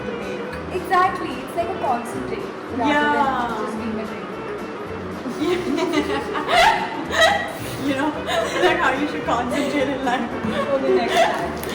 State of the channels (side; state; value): both; identical; correlation 1.00